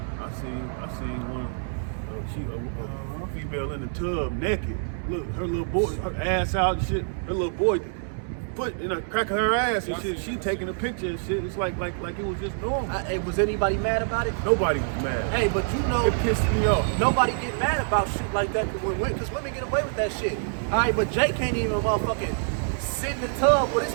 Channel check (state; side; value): silent; left; 61 dB below the other